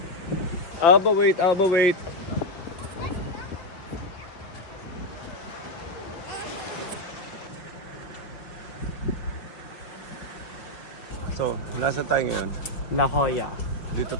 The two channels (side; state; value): right; late; 5.4 ms